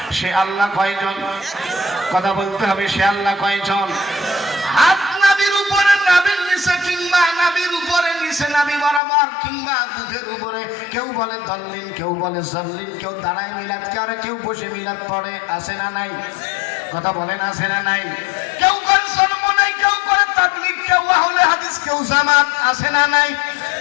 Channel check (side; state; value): right; drops out; at 9.0 s